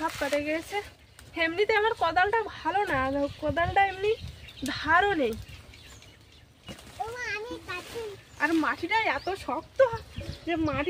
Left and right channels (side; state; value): both; identical; correlation 1.00